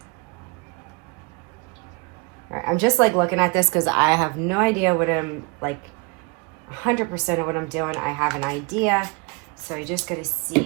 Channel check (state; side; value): quieter; left; 29.1 dB